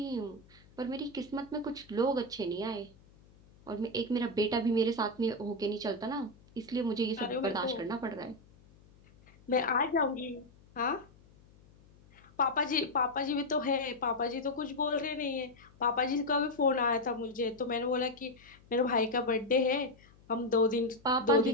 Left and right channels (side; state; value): left; noise; hum, 26 dB below the sound